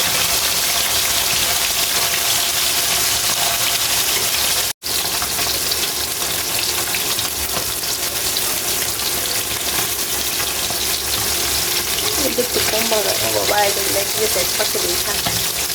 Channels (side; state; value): both; identical; correlation 1.00